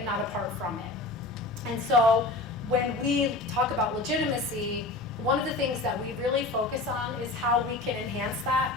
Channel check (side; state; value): right; quieter; 3.1 dB